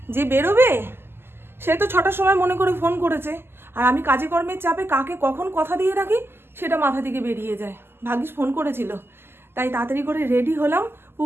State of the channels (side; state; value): left; late; 0.11 ms